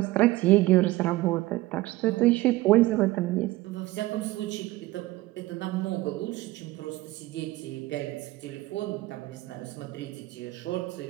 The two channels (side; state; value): left; quieter; 18.5 dB